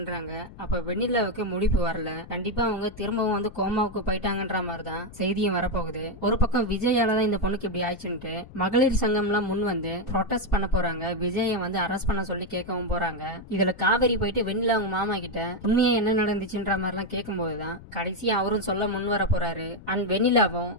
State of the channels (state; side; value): noise; left; rumble, 17 dB below the sound